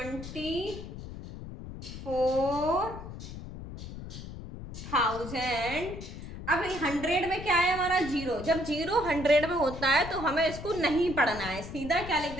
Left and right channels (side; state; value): left; noise; rumble, 11 dB below the sound